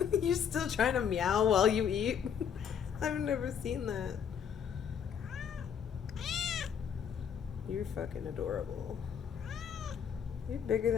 You're still trying to meow while you eat? I've never seen that. You're fucking adorable. You're bigger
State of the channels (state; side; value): quieter; right; 7.9 dB